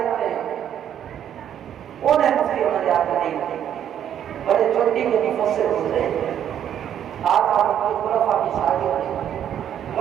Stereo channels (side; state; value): left; quieter; 9.9 dB